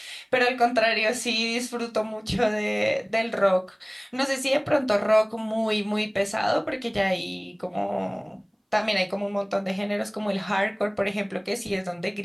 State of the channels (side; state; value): both; identical; correlation 1.00